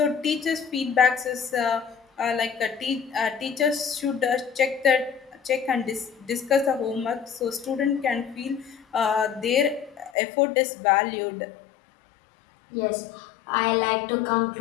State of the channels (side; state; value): right; drops out; at 10.1 s